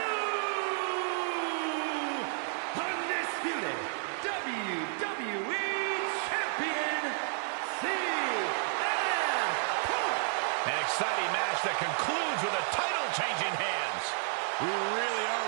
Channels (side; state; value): left; silent; 57 dB below the other